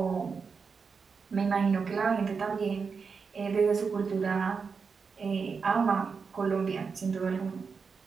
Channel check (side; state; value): left; quieter; 5.4 dB